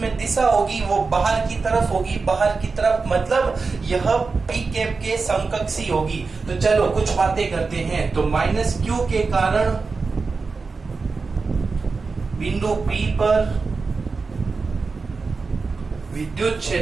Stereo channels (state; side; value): quieter; left; 4.4 dB